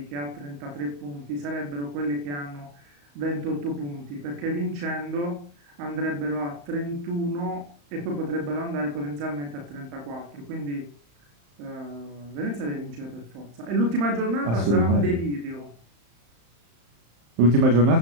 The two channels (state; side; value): late; left; 35 ms